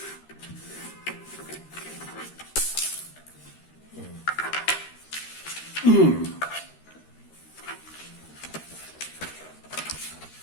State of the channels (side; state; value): right; late; 13 ms